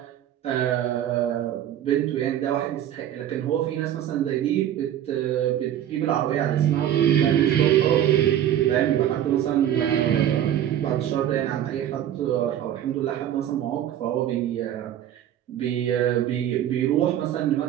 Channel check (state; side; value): quieter; left; 11.1 dB